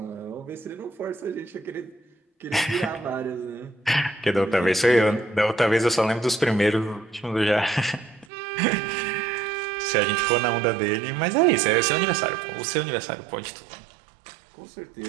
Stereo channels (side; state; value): left; drops out; at 8.2 s